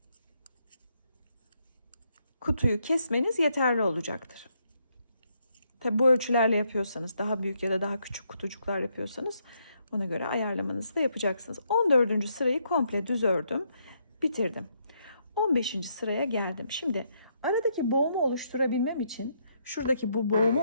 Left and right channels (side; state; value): both; inverted; correlation -0.76